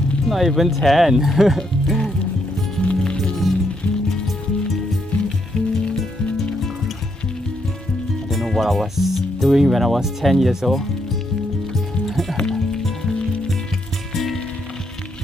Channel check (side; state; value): both; normal; correlation 0.77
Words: not even 10. I don't know what I was doing when I was 10 years old.